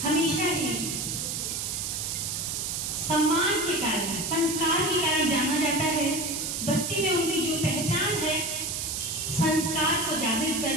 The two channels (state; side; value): noise; right; hiss, 2 dB below the sound